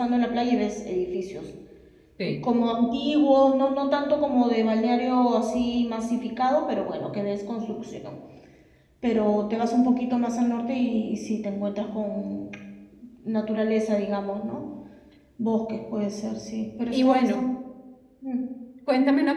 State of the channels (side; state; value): both; identical; correlation 1.00